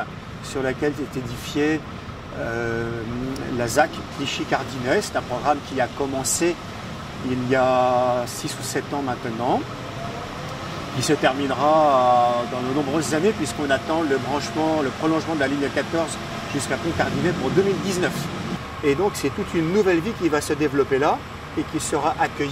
sur laquelle est édifiée la ZAC Clichy-Cardinet. C'est un programme qui a commencé il y a 6 ou 7 ans maintenant, qui se terminera dans de nombreuses années, puisqu'on attend le prolongement de la ligne 14 jusqu'à Pont-Cardinet pour 2019. Et donc c'est toute une nouvelle vie qui va se développer là et qui sera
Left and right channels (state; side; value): identical; both; correlation 1.00